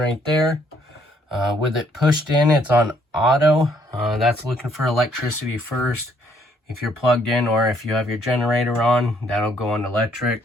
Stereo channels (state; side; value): normal; both; correlation 0.67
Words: there. With it pushed in, it's on auto. That's looking for electricity first. If you're plugged in, or if you have your generator on, that'll go on